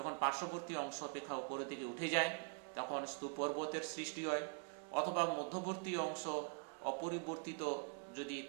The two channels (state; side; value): quieter; left; 39.8 dB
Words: পার্শ্ববর্তী অংশ অপেক্ষা উপরের দিকে উঠে যায় তখন স্তূপ পর্বতের সৃষ্টি হয়। অথবা মধ্যবর্তী অংশ অপরিবর্তিত যদি